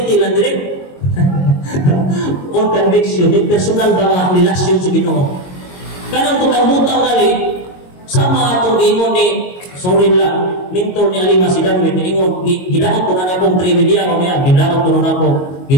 lang direct. On conviction, di personal ba nga relasyon sa Ginoo. Kanang kutang-butang gali, sama atong ingon ni, sorry lang, minto ni Alima si Darwin, ingon, gidakot ko na akong trivia ko niya, gidakot ko na ako,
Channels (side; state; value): right; late; 22 ms